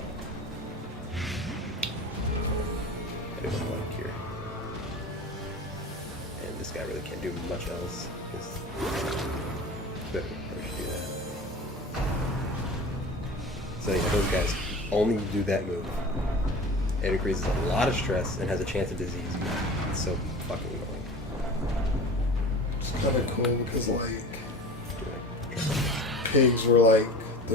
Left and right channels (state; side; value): normal; both; correlation 0.36